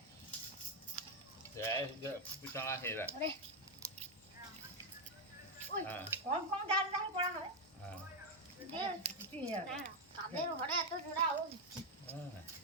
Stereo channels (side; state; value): both; normal; correlation 0.03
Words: বিছানা খেয়ে রাখ হ্যাঁ কম কম ডাল ডাল পড়া হবে হ্যাঁ কাদের ঘরে এত জোড়া ও হ্যাঁ